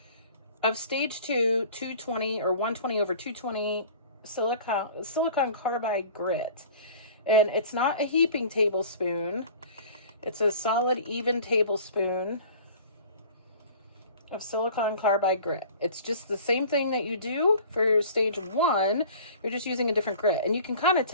of stage 2 220 or 120 over 220 silicon carbide grit. And it's not a heaping tablespoon. It's a solid, even tablespoon of silicon carbide grit. It's just the same thing that you do for stage 1. You're just using a different grit. And you can kind of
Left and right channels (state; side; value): inverted; both; correlation -0.45